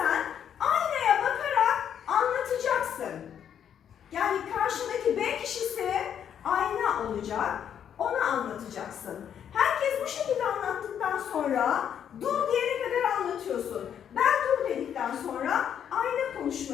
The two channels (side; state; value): right; quieter; 8.9 dB